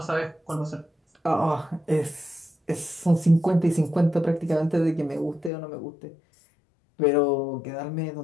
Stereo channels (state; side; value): drops out; right; at 5.5 s